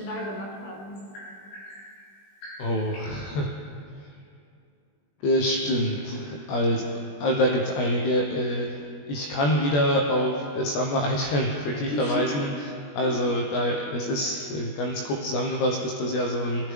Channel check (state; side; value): late; right; 21 ms